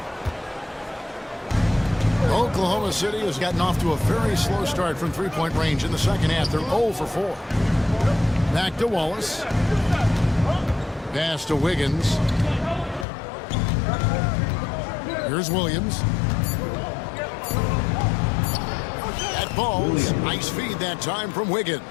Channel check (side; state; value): right; drops out; at 13.1 s